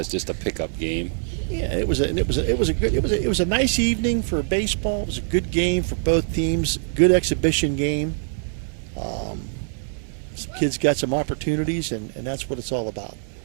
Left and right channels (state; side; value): silent; left; 63 dB below the other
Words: just a pickup game. Yeah, it was a nice evening for baseball. It was a good game for both teams. Good exhibition game. Some kids got some opportunities, and that's what it's all about.